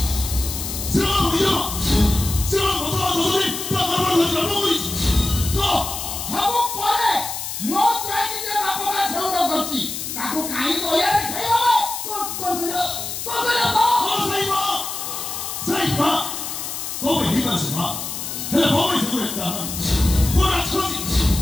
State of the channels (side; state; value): left; noise; hiss, 6 dB below the sound